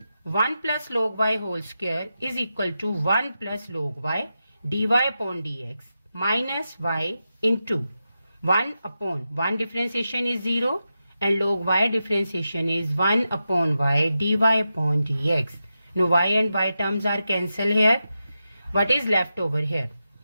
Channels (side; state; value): both; inverted; correlation -0.89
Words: 1 plus log y whole square is equal to 1 plus log y dy upon dx minus y into 1 upon 1 differentiation is 0 and log y differentiation is 1 upon y dy upon dx. Now y and y terms are cancelled here. What is left over here?